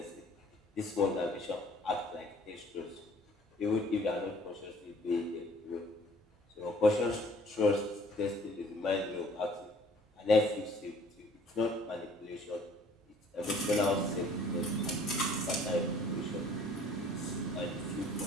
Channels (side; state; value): both; normal; correlation 0.55